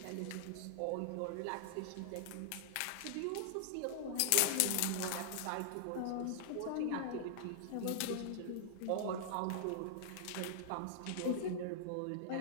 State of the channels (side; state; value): both; different; correlation -0.01